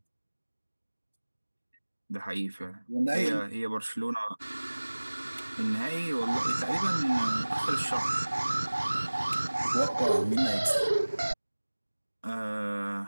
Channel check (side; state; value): both; inverted; correlation -1.00